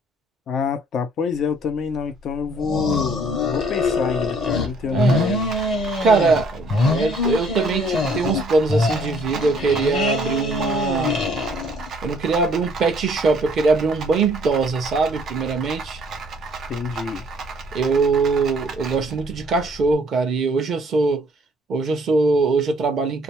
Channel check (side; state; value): both; normal; correlation 0.61